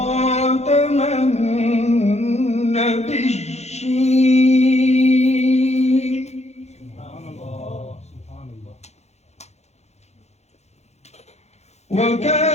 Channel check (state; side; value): late; right; 0.32 ms